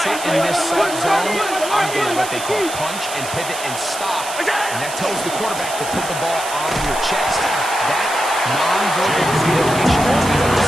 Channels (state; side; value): noise; right; hiss, 9 dB below the sound